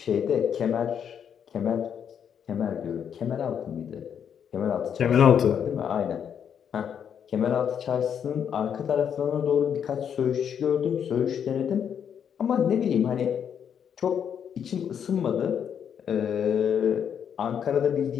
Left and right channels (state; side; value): quieter; right; 8.2 dB